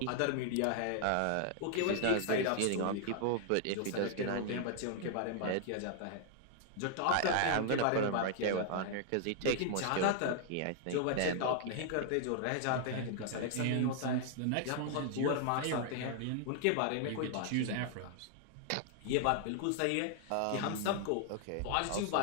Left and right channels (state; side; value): different; both; correlation 0.00